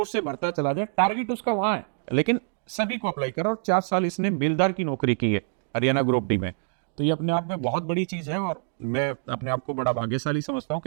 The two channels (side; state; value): left; silent; 61 dB below the other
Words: से भरता चला जाए, टारगेट उसका वहां है, लेकिन सभी को अप्लाई करा। और 4 साल इसने बेलदार की नौकरी की है हरियाणा ग्रुप डी में, तो ये अपने आप में बहुत बड़ी चीज है। और मैं अपने आप को बड़ा भाग्यशाली समझता हूँ